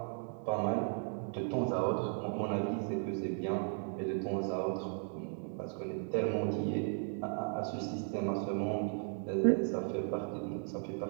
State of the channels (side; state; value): left; silent; 54 dB below the other